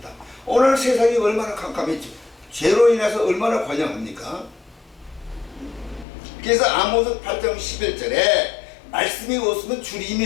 오늘 세상이 얼마나 캄캄했죠. 죄로 인해서 얼마나 관영합니까? 그래서 아모스 8장 11절에 말씀이 없으면 주림이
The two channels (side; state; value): right; drops out; at 6.1 s